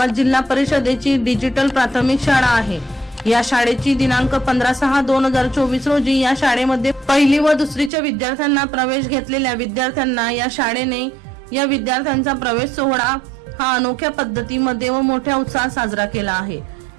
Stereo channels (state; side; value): drops out; left; at 7.9 s